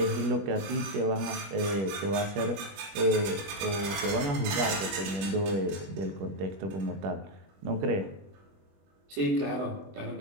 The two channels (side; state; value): left; late; 21 ms